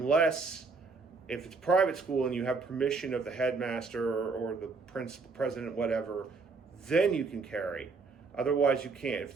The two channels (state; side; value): quieter; left; 4.3 dB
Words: if it's private school and you have permission of the headmaster or the principal, president, whatever, then you can carry. Otherwise, you can't. If